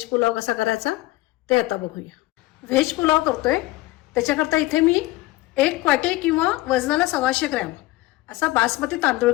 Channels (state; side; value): quieter; right; 18.9 dB